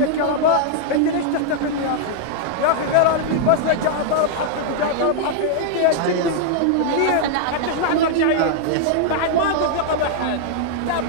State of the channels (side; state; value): both; different; correlation -0.01